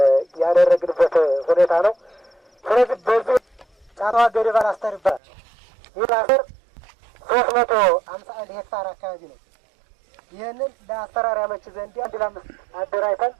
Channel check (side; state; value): left; drops out; at 5.2 s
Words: ያደረግንበት ሁኔታ ነው። ስለዚህ በዚህ ጫቷ ገደባ አስተር ይባላል። ይህ አስተር 351 ሄክታር አካባቢ ነው። ይህንን ለአሰራር ያመች ዘንድ 1 ለ5 አደራጅተን